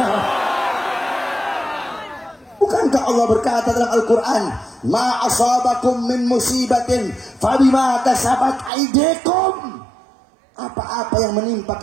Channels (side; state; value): left; drops out; at 8.7 s